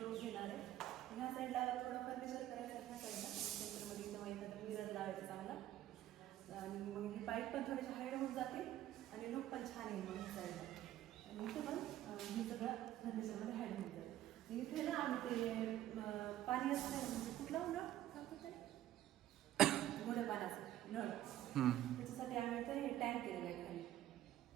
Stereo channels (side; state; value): left; quieter; 13.0 dB